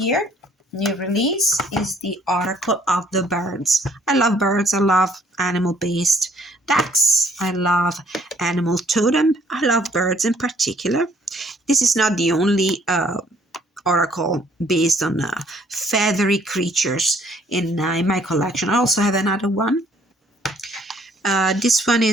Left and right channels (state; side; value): normal; both; correlation 0.62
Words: New release is the Oracle of the Birds. I love birds. I love animal-based decks. I love animal totem. I love birds in particular. This is not the only oracle based on feathery creatures in my collection. I also have another one. This one